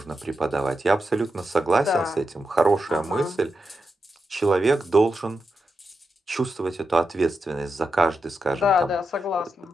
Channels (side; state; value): both; normal; correlation 0.88